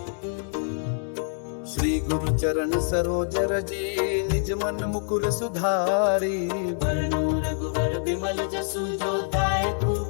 श्री गुरु चरण सरोज रजी, निज मन मुकुर सुधारी। वरनु रघुवर बिमल जसु, जो दायकु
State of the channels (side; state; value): right; silent; digital silence